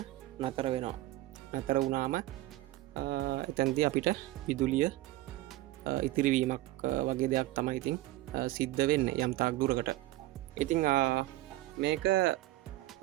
නතර වෙනවා. නතර වුණාම එතැන්දී අපිට විදුලිය ඉතිරිවීමක් වගේ දෙයක් තමයි ඉතින් සිද්ධ වෙන්නේ යම් තාක් දුරකට. ඉතින් මේක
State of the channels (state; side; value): quieter; left; 17.0 dB